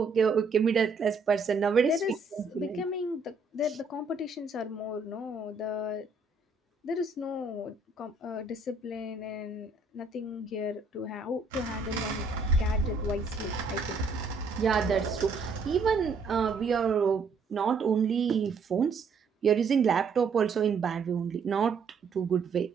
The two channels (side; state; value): left; quieter; 4.2 dB